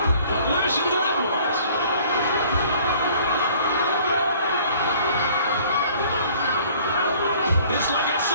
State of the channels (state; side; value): inverted; both; correlation -0.54